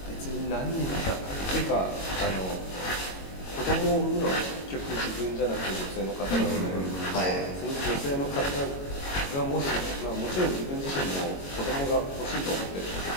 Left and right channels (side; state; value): right; late; 22 ms